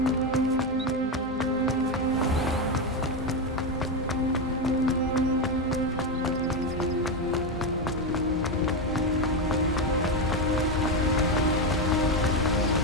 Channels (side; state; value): both; normal; correlation 0.10